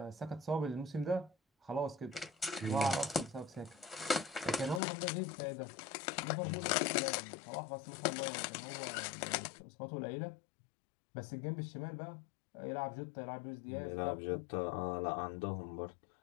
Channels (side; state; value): right; drops out; at 4.8 s